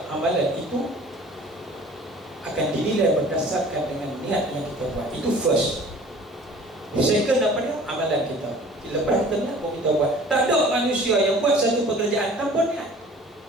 amalan itu akan dinilai berdasarkan dengan niat yang kita buat. Itu first. Second apa dia? Amalan kita. Lepas niat pun kita buat. Tak ada manusia yang buat satu pekerjaan tanpa niat.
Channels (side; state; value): both; normal; correlation 0.47